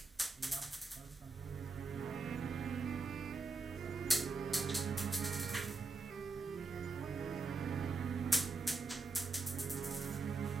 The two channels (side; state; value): left; quieter; 3.8 dB